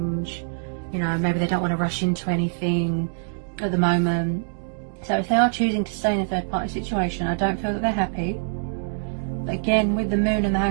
You know, maybe they don't want to rush into anything at the moment. So if they are choosing to stay in a third party situation, I don't feel that they're happy. But again, with the Moon and the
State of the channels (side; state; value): left; silent; digital silence